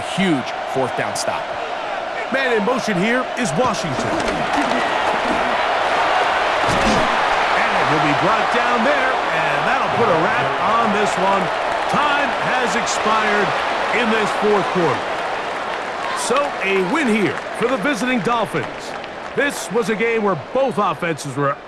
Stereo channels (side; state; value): both; identical; correlation 1.00